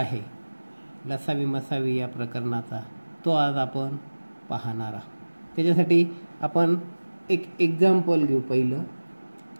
लसावी मसावी या प्रकरणाचा, तो आज आपण पाहणार आहोत. त्याच्यासाठी आपण एक एक्झाम्पल घेऊ. पहिलं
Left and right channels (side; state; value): both; inverted; correlation -1.00